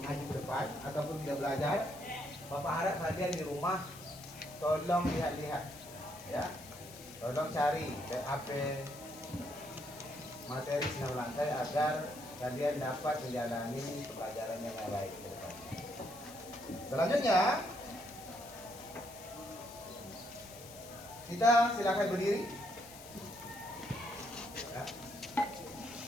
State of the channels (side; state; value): left; noise; hiss, 16 dB below the sound